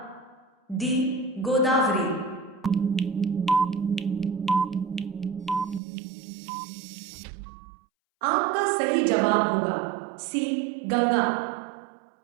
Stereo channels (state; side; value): drops out; left; at 5.8 s